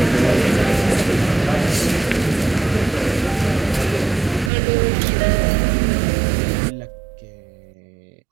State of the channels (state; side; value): drops out; left; at 4.5 s